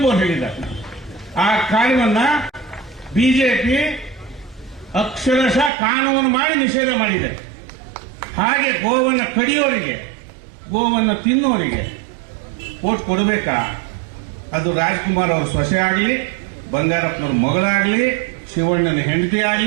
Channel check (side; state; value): left; drops out; at 5.7 s